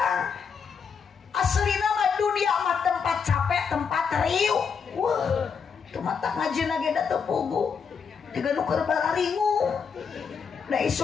Aslina mah dunia mah tempat capek, tempat riuh. Wah, itu mata ngajina ge da teu pugu. Tiga nu keur bararingu. Da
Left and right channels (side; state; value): right; quieter; 6.2 dB